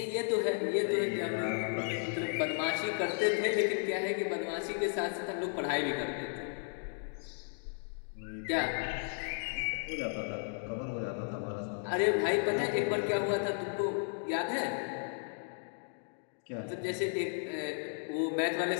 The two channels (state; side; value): silent; right; 55 dB below the other